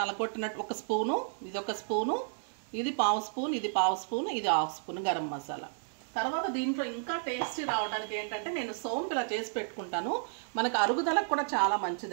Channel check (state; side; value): silent; left; digital silence